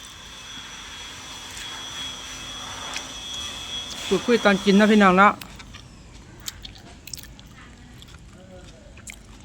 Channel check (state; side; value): identical; both; correlation 1.00